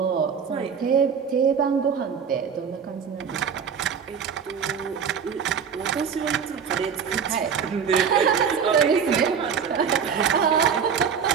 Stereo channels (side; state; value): left; quieter; 7.0 dB